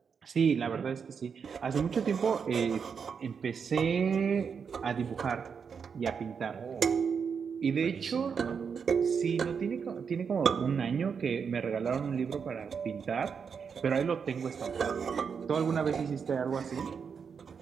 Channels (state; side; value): quieter; left; 6.3 dB